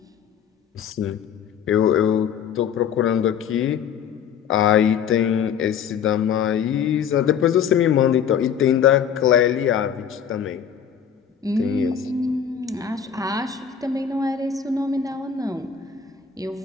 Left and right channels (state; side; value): quieter; right; 7.9 dB